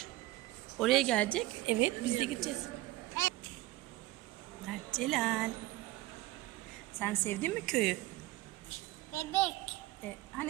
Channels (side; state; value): left; quieter; 17.9 dB